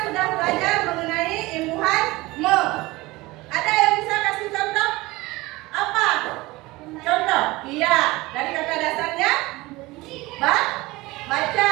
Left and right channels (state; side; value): quieter; left; 20.8 dB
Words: sudah belajar mengenai imbuhan me. Ada yang bisa kasih contoh? Apa? Contoh? Iya. Dari kata dasarnya? Baca.